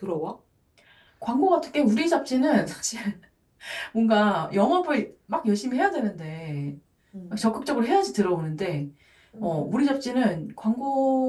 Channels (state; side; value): identical; both; correlation 1.00